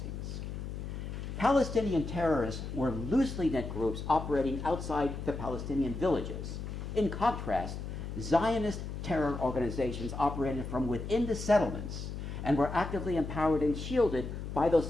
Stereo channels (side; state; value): left; noise; hum, 7 dB below the sound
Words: Palestinian terrorists were loosely knit groups operating outside the Palestinian villages. In contrast, Zionist terror organizations operated from within the settlements and were actively empowered and shielded by those